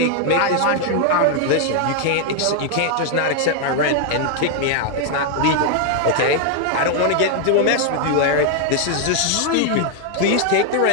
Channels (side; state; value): both; different; correlation 0.00